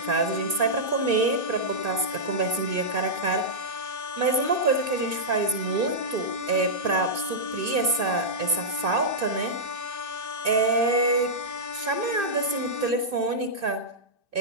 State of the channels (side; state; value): left; late; 2.6 ms